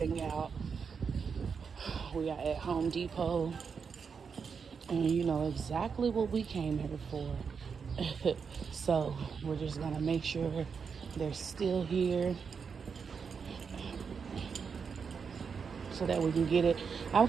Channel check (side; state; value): left; quieter; 6.0 dB